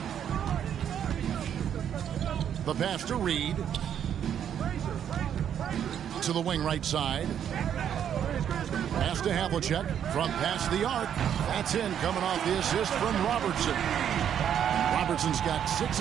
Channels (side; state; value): left; quieter; 9.2 dB